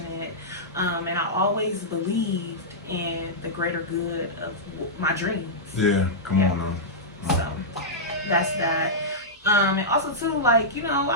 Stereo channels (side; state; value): both; normal; correlation -0.11